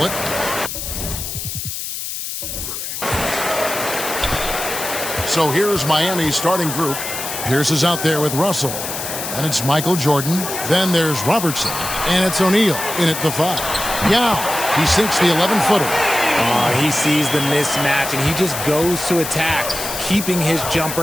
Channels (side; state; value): left; noise; hiss, 6 dB below the sound